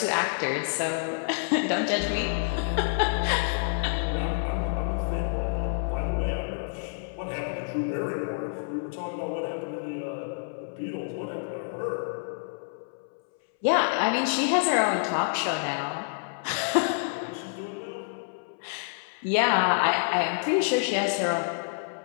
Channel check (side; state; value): right; silent; 59 dB below the other